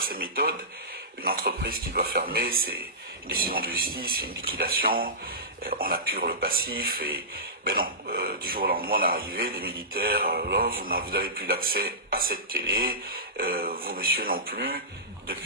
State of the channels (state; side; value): normal; both; correlation -0.20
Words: ces méthodes. Une entreprise qui doit fermer, c'est une décision de justice, une liquidation, on appure le passif et ben non, du jour au lendemain on est arrivé, des militaires, vous n'avez plus l'accès à cette télé, vous monsieur non plus,